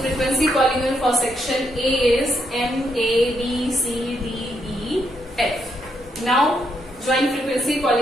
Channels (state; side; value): normal; both; correlation 0.77